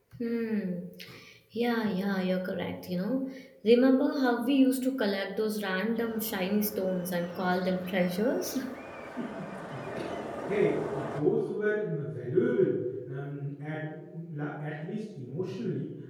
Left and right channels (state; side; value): identical; both; correlation 1.00